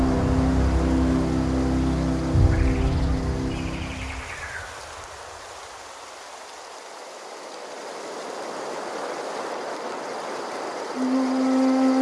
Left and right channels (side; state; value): both; identical; correlation 1.00